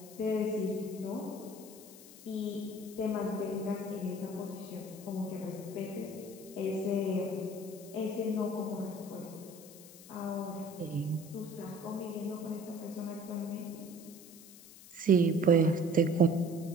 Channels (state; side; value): noise; left; hiss, 18 dB below the sound